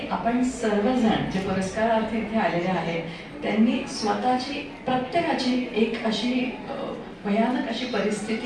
आपण सर्वजण जे पुरस्कारार्थी इथे आलेले आहेत त्यांनी स्वतःची प्रत्येकाची एक अशी भयानक अशी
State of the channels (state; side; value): identical; both; correlation 1.00